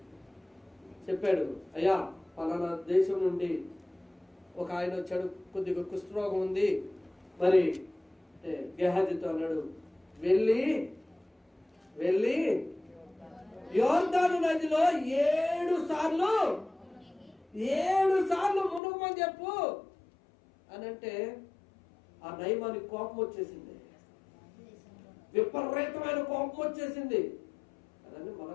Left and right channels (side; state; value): right; drops out; at 18.8 s